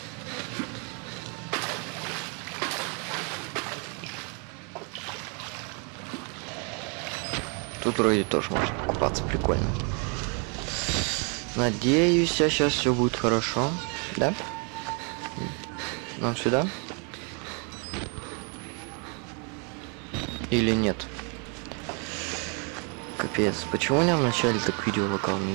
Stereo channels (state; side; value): quieter; left; 36.2 dB